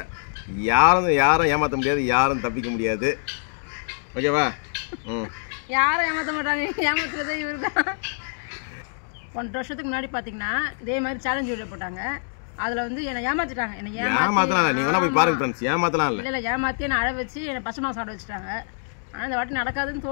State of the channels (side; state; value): right; silent; digital silence